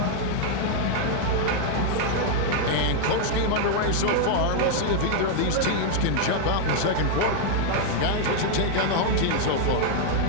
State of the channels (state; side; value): different; both; correlation 0.00